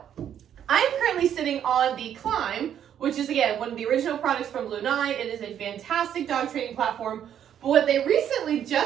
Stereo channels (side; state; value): left; quieter; 9.7 dB